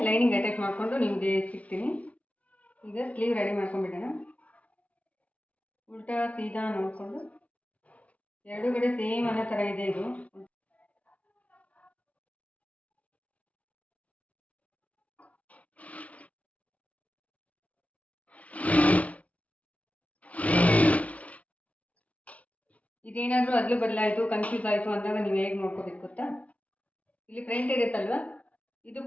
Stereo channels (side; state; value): right; late; 0.067 ms